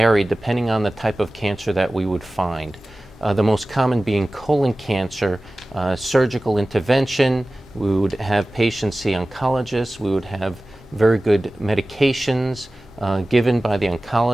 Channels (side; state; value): both; normal; correlation 0.97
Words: depending on the type of cancer that we would find. The most common being colon cancer, surgical intervention. We would have patients see oncologists. We would have very good medications given by the